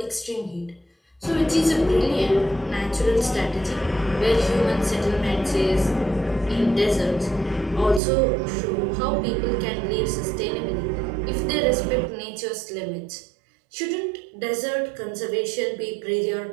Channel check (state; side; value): drops out; left; at 8.0 s